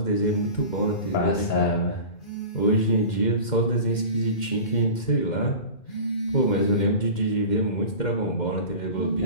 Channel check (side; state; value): right; late; 2.1 ms